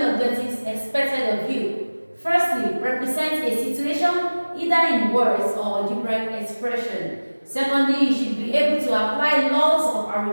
objectives expected of you. Firstly, represent a situation either in words or algebraic expression. Secondly, you should be able to apply laws of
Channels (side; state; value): both; inverted; correlation -1.00